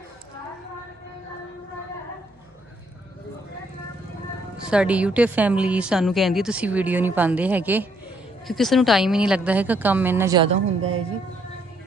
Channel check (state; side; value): normal; both; correlation 0.70